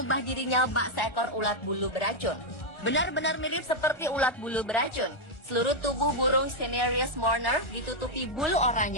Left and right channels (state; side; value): late; right; 1.4 ms